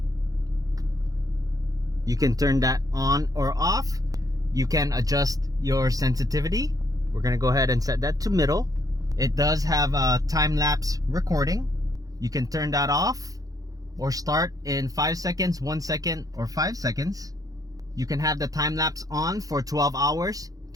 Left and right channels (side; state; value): left; late; 0.17 ms